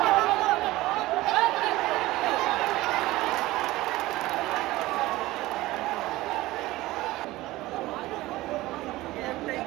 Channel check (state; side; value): quieter; left; 18.2 dB